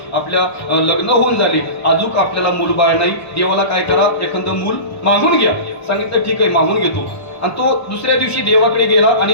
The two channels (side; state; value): right; late; 1.1 ms